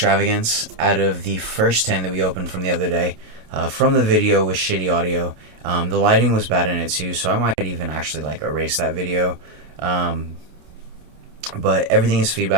out of the first 10 that we opened from the other day, from the video with shitty audio. The lighting was bad in it too, so I might even actually like erase that video. But everything is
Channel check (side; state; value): left; late; 26 ms